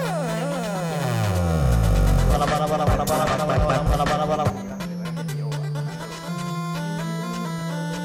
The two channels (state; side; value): identical; both; correlation 1.00